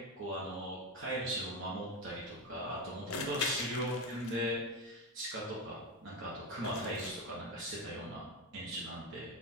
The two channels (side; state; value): both; normal; correlation 0.15